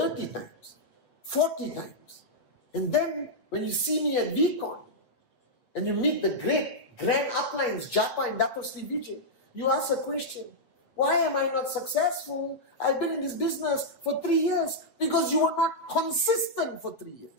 times, 40 times. And then when you see me at VCon and you meet the great grand uplines, Japa and Dato Sri Vijay, you ask a question. Why am I not successful? I've been in this business for 3 years. Because you were not consistent for 3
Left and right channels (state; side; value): late; right; 8.3 ms